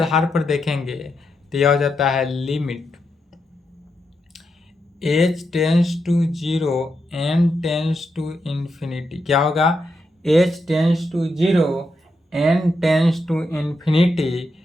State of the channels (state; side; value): normal; both; correlation 0.84